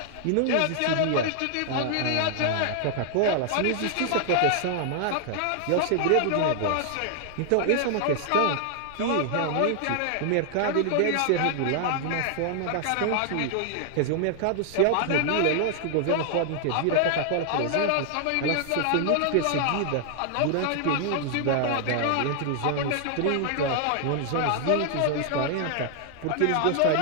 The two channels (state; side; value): different; both; correlation 0.00